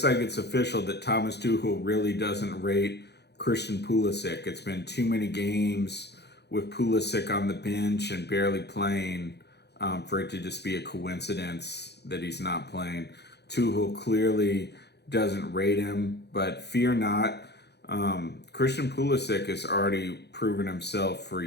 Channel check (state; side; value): late; right; 0.49 ms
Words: like it's official that Thomas Tuchel really doesn't rate Christian Pulisic. It's been too many games with Pulisic on the bench and barely playing for it to just be a coincidence that he's not playing. Tuchel clearly doesn't rate him, but fear not. Christian Pulisic has already proven himself for